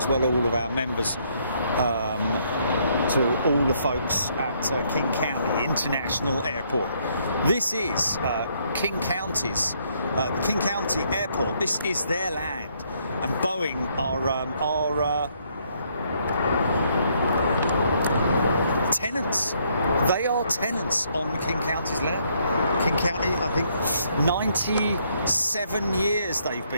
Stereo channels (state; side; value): inverted; both; correlation -0.70